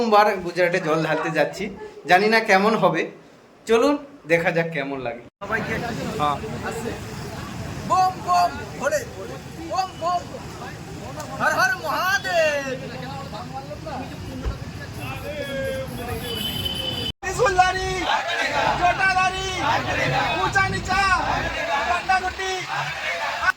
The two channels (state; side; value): identical; both; correlation 1.00